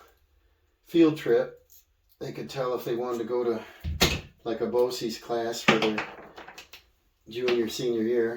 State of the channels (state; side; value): identical; both; correlation 1.00